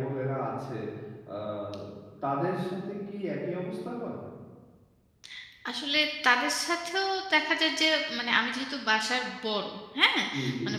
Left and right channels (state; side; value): identical; both; correlation 1.00